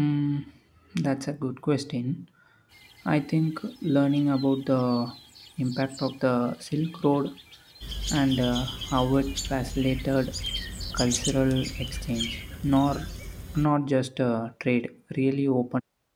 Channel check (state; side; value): identical; both; correlation 1.00